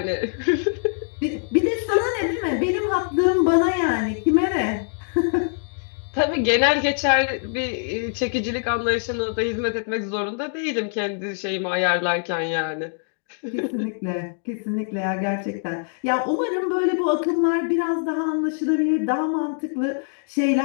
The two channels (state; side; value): silent; right; digital silence